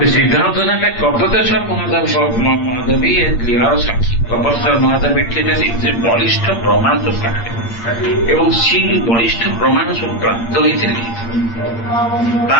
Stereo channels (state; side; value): late; right; 8.7 ms